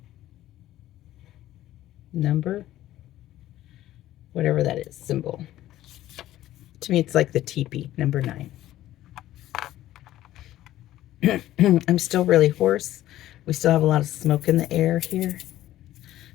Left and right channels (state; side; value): quieter; right; 14.1 dB